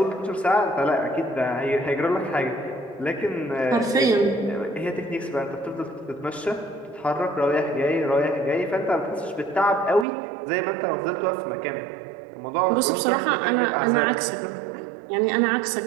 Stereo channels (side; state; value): left; drops out; at 10.1 s